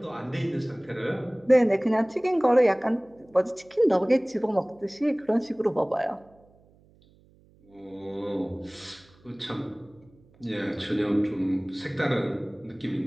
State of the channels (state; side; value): noise; right; hum, 30 dB below the sound